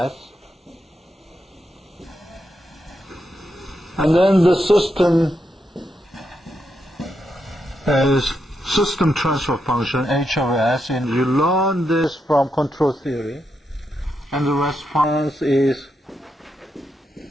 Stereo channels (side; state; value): both; normal; correlation 0.83